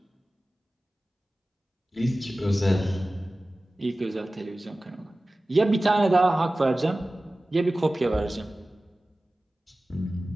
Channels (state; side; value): normal; both; correlation 0.97